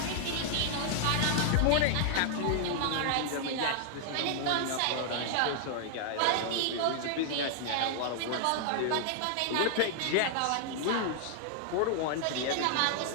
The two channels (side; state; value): both; different; correlation 0.00